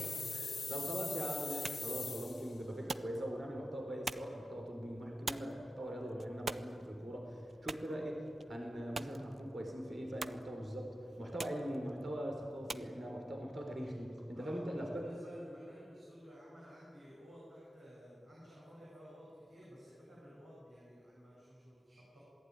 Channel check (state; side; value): normal; both; correlation 0.92